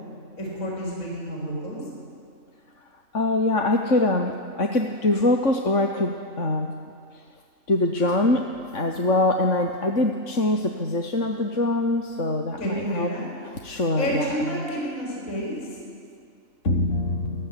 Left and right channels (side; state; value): right; late; 3.5 ms